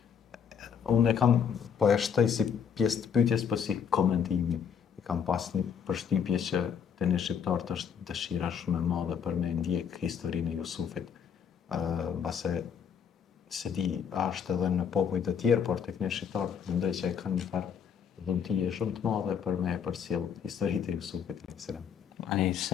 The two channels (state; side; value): quieter; right; 7.5 dB